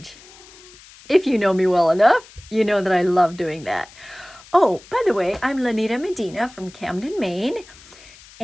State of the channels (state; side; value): noise; left; hiss, 22 dB below the sound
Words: If you know me well enough, you know that I love doing that. Oh, by the way, I'm Lanita Medina from Camden, Maine.